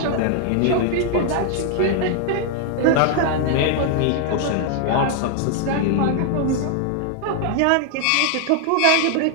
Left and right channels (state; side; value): different; both; correlation 0.00